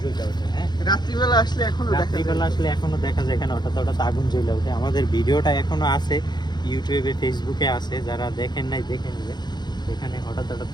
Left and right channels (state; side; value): late; right; 0.21 ms